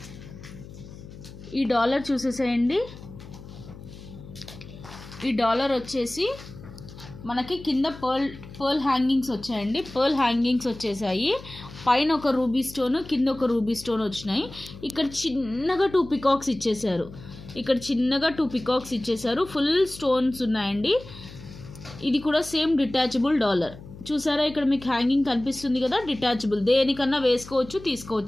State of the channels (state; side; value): noise; left; hum, 16 dB below the sound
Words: ఈ డాలర్ చూసేసేయండి. ఈ డాలర్ వచ్చేసి మనకి కింద పర్ల్ హ్యాంగింగ్స్ వచ్చాయండి. పర్ల్ హ్యాంగింగ్స్ వచ్చేసాయి. పైన ఒక రూబీ స్టోన్, కింద ఒక రూబీ స్టోన్ వచ్చినాయి. ఇక్కడ చిన్నగా 2 పికాక్స్ ఇచ్చేసారు. ఫుల్ స్టోన్స్ ఉన్నాయండి. ఇది కూడా సేమ్ డిటాచబుల్ డాలర్. చూసారా ఇక్కడ మీకు హ్యాంగింగ్ కనిపిస్తుంది కదా, డిటాచబుల్. దేనికన్నా వేసుకోవచ్చు,